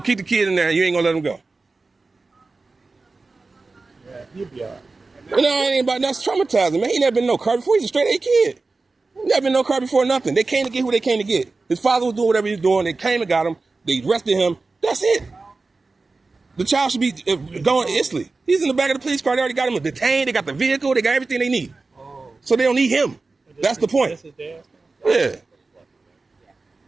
keep the kid in there and you ain't gonna let him go. Yeah, he'll be all No, right. it ain't about that's traumatizing, man. He never been in no car before. He's a straight A kid. He never been in no car before, nothing. They came to get who they came to get. His father was doing whatever he was doing. They came and got him. They arrested him. That's it. The child should be going instantly. He's in the back of the police car. They already got him detained. They got the vehicle. They got everything they need. So they don't need him. That's the point. Yeah.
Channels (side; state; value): left; quieter; 3.7 dB